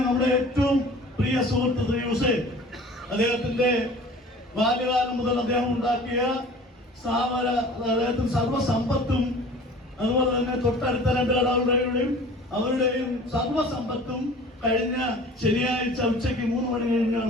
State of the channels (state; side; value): normal; both; correlation 0.44